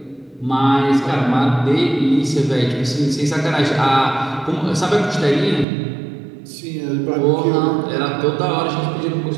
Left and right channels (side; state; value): left; drops out; at 5.7 s